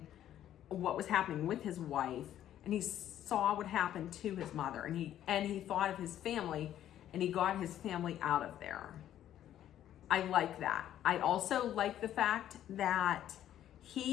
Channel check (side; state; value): right; quieter; 11.5 dB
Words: with his wife, and he saw what happened to his mother, and he thought of his family, and he got his family out of there. I like that. I also like the fact that